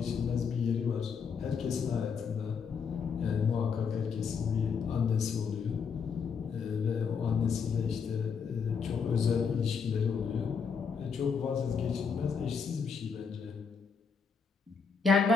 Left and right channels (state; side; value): quieter; right; 5.9 dB